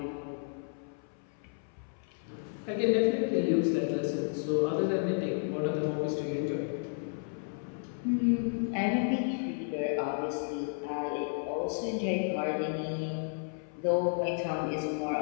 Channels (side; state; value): right; silent; 56 dB below the other